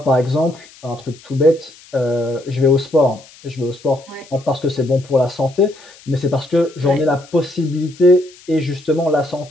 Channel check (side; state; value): left; noise; hiss, 23 dB below the sound